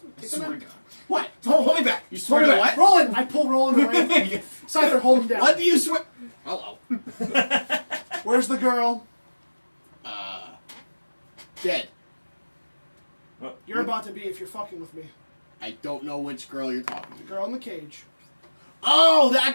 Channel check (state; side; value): inverted; both; correlation -1.00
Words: me. I Take the swear to knife. God. What? Don't hold me back. You swear Hold to it. what? Roland. I pull Roland away. Scyther, hold him down. What do you swear? Hello. Where's the girl? Dead. You're about to be if you're fucking with me. I don't know which girl you're talking The to. girl in the cage. Oh,